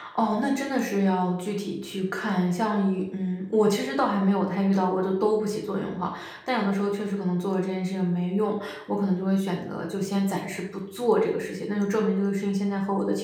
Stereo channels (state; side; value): identical; both; correlation 1.00